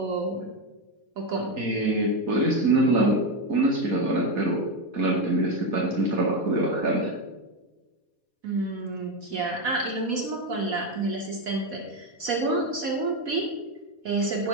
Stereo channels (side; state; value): left; late; 4.2 ms